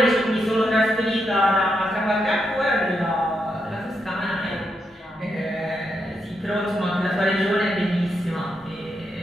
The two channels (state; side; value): normal; both; correlation 0.82